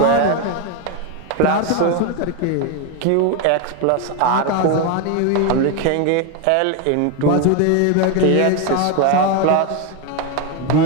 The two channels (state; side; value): different; both; correlation 0.02